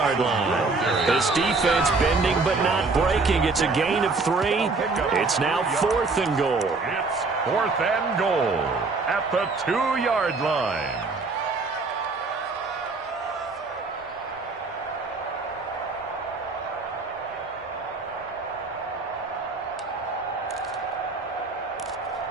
line. This defense bending but not breaking. It's a gain of 3. It's now 4th and goal. It's 4th and goal at the 2-yard line.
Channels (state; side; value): quieter; left; 3.9 dB